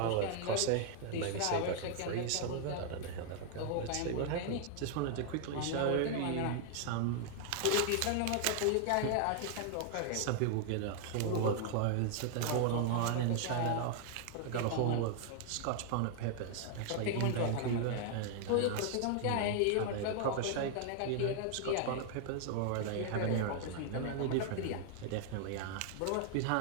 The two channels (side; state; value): both; different; correlation 0.00